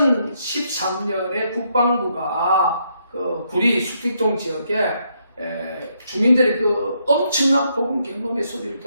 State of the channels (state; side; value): inverted; both; correlation -0.75